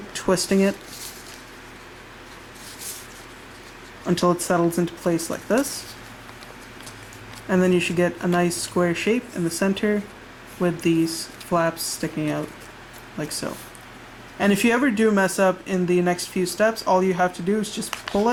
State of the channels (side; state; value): both; identical; correlation 1.00